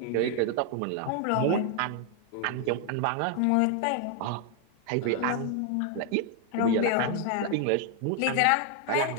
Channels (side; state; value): both; different; correlation 0.00